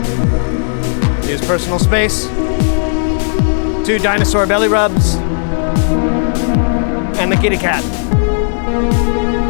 Use personal space. 2 dinosaur belly rubs. And the kitty cat.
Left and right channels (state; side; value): silent; right; digital silence